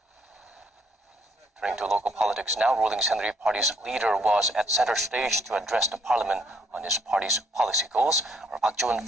Turning to local politics now, ruling Saenuri Party's leader was at center stage to address the parliament on his party's policy goals. Our Park Jo-eun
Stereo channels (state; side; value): normal; both; correlation 0.67